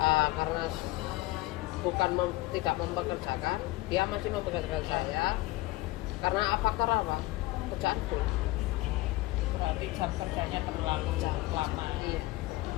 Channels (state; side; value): quieter; right; 19.1 dB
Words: Karena bukan tidak mempekerjakan, dia masih mempekerjakan saya. Karena faktor apa? Kerjaanku. Berarti jam kerjanya terlalu lama. Iya.